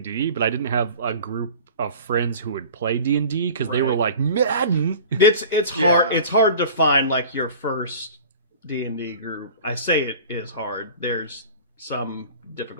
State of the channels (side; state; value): both; inverted; correlation -0.41